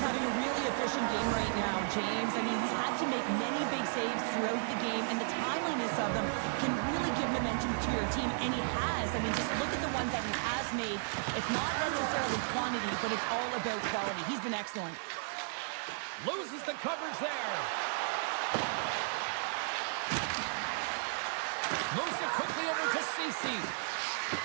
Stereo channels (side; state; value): left; silent; 55 dB below the other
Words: having a really efficient game right now, James. I mean, he's had to make many big saves throughout the game, and the timeliness of them can really give momentum to your team, and he has. I mean, just look at the ones that he has made. It's not necessarily quantity, but it's all about quality. He's been excellent. Loses the coverage there. Moves it quickly over to Ceci.